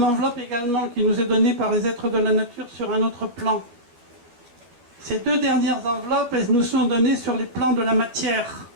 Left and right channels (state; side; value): late; left; 13 ms